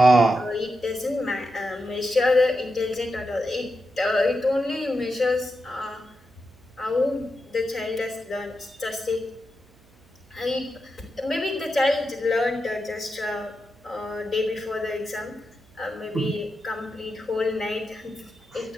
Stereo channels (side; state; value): right; noise; hum, 29 dB below the sound